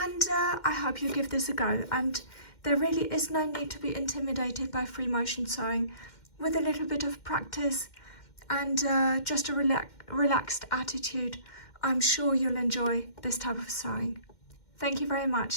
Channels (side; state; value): right; late; 2.1 ms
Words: I hope you give this a go, and there really is no need to be intimidated by free motion sewing. With a little bit of practice and just a relaxed attitude, I'm sure you'll enjoy this type of sewing. Thank you very